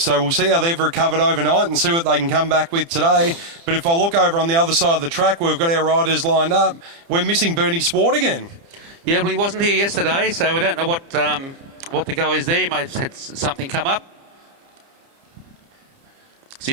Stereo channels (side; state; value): left; late; 30 ms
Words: so we'll see how they've recovered overnight and see what they can come back with today. But if I look over on the other side of the track, we've got our riders lined up. We're missing Bernie Swart again. Yeah, well, he wasn't here yesterday, so we don't know what the go is there. He may have had something come up.